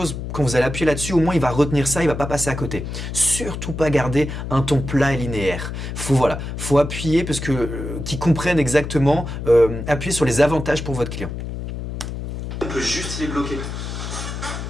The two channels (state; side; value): noise; left; hum, 6 dB below the sound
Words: quand vous allez appuyer là-dessus, au moins il va retenir ça, il va pas passer à côté. Surtout pas garder un ton plat et linéaire. Faut appuyer parce que qu'ils comprennent exactement, appuyer sur les avantages pour votre client. On peut juste les bloquer.